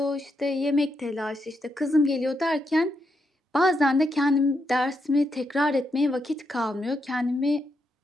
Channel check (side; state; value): both; normal; correlation 0.82